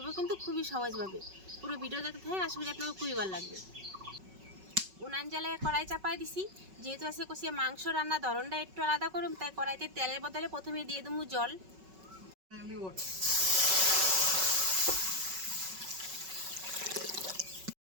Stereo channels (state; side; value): late; left; 5.3 ms